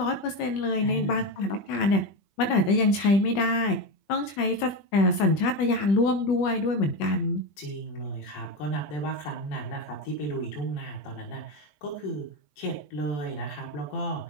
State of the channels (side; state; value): right; late; 20 ms